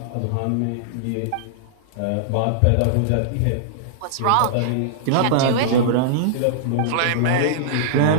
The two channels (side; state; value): both; different; correlation -0.02